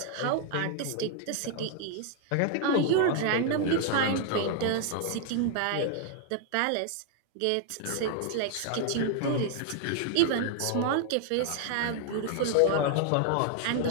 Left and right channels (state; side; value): different; both; correlation 0.00